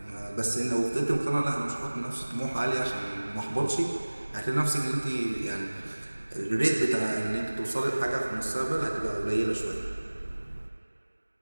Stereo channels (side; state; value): both; inverted; correlation -1.00